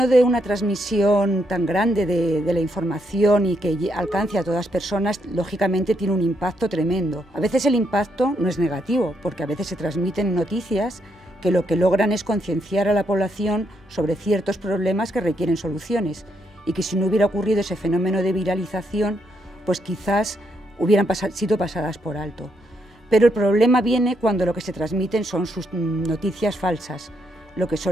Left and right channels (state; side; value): normal; both; correlation 0.77